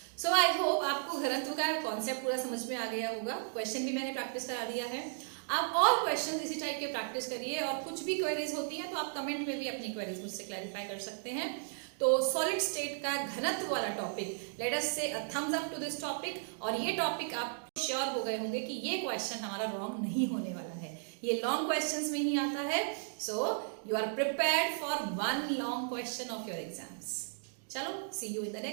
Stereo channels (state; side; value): silent; left; digital silence